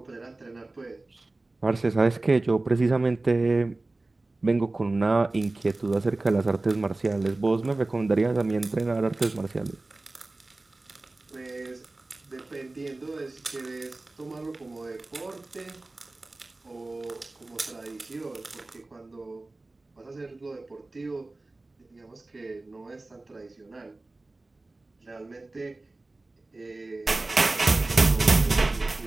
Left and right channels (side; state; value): left; quieter; 3.0 dB